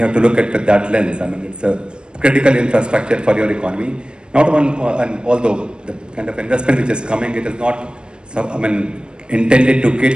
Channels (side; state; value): left; late; 0.053 ms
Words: to look at that lens. I mean, it's a critical infrastructure for your economy. Not one, and although the kind of investment which is coming, it is not, intended to